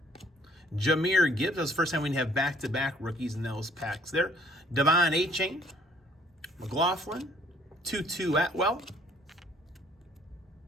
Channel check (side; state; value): both; normal; correlation 0.59